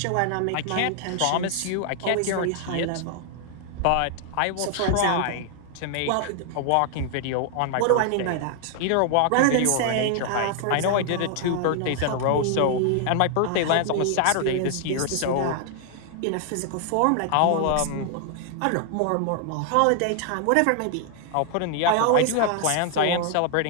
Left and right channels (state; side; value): different; both; correlation 0.00